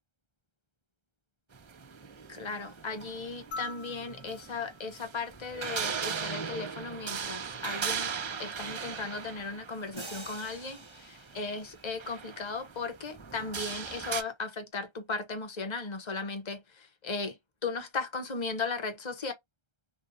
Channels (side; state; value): right; late; 1.3 ms